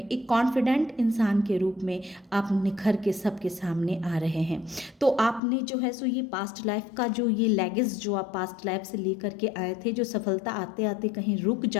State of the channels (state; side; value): drops out; right; at 5.4 s